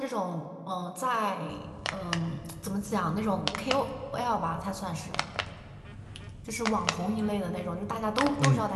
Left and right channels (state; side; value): identical; both; correlation 1.00